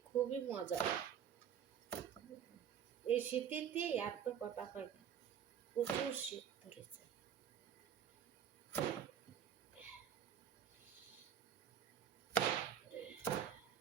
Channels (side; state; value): left; quieter; 8.8 dB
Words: খুবই মজা। এই শীতেতে আর তো কথা পাই না, প্রচুর শীত ধরেছে।